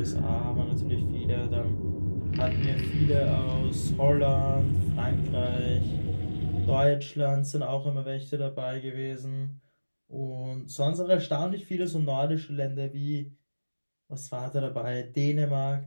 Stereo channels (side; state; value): both; inverted; correlation -1.00